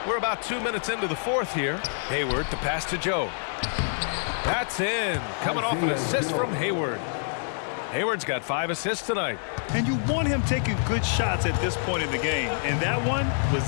We're about 2 minutes into the fourth here. Hayward to pass to Joe. That's in. Coming off an assist from Hayward. Hayward's got 5 assists tonight. And you want him taking good shots at this point in the game, and that one was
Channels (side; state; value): right; silent; digital silence